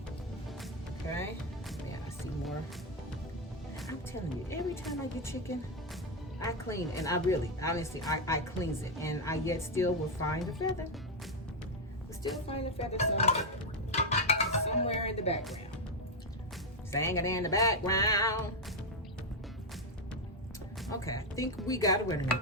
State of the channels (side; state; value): both; normal; correlation 0.05